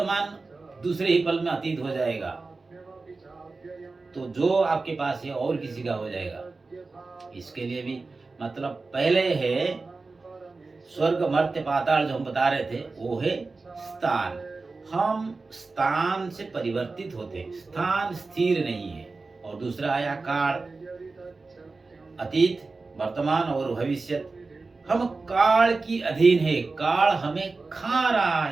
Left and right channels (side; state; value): left; quieter; 3.8 dB